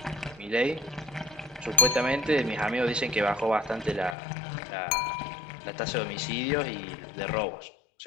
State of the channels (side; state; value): right; drops out; at 4.2 s